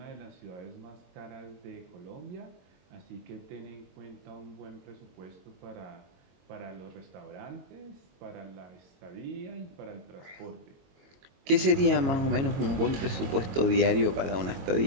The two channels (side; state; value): left; late; 22 ms